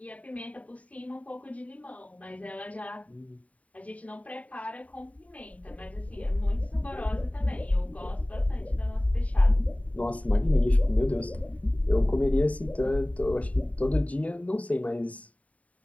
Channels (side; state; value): right; late; 0.068 ms